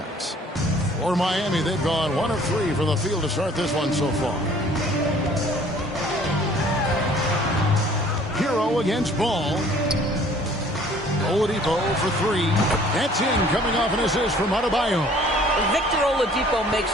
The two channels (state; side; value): normal; both; correlation 0.54